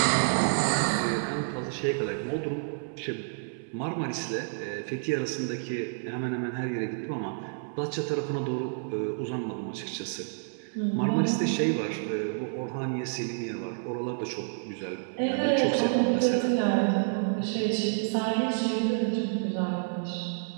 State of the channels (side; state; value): left; silent; 58 dB below the other